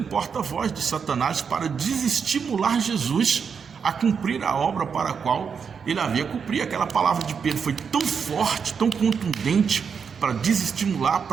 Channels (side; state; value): left; quieter; 6.4 dB